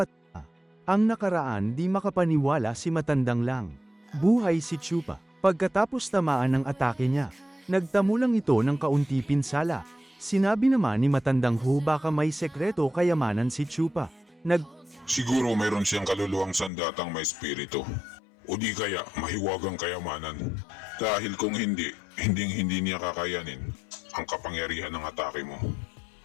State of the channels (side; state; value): right; drops out; at 16.7 s